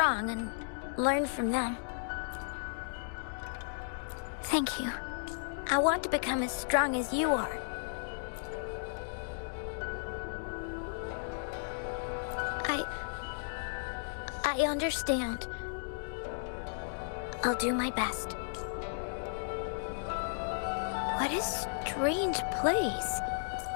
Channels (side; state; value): right; silent; digital silence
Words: and learn from them. Thank you. I want to become as strong as you are. I understand. I'll do my best. What a strange place.